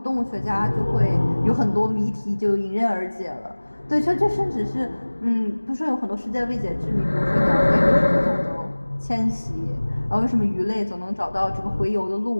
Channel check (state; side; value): inverted; both; correlation -1.00